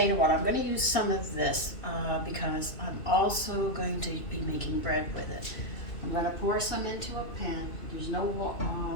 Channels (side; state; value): right; late; 2.6 ms